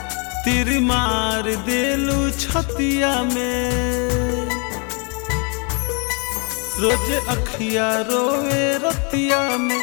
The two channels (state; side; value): quieter; right; 34.7 dB